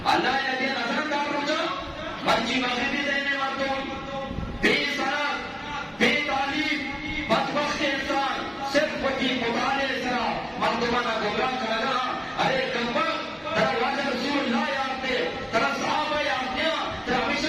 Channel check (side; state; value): both; identical; correlation 1.00